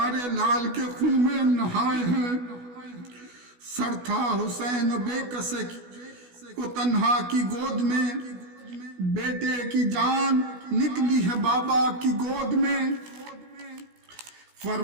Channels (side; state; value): left; late; 16 ms